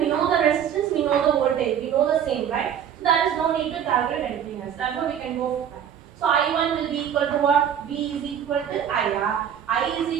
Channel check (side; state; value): left; quieter; 9.0 dB